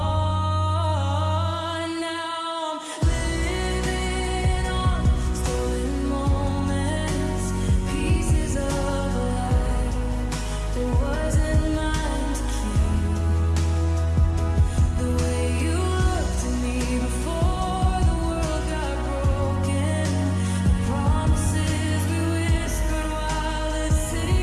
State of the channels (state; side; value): identical; both; correlation 1.00